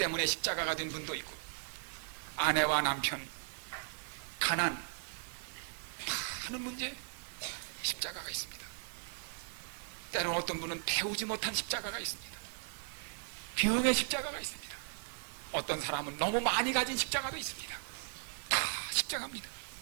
십자가가 된 분도 있고, 아내와 남편, 가난, 많은 문제에 십자가가 있습니다. 때로는 어떤 분은 배우지 못한 십자가가 있습니다. 병의 십자가가 있습니다. 어떤 사람은 너무 많이 가진 십자가도 있습니다. 다 십자가입니다.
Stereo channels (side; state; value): left; silent; digital silence